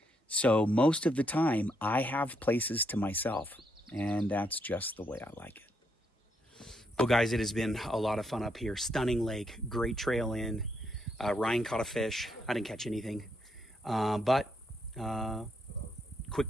So most of the time I have places to myself, and that's just the way I like it. Well, guys, it has been a lot of fun up here. Stunning lake, great trail in. Ryan caught a fish. I didn't catch anything. But quick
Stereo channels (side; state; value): both; normal; correlation 0.77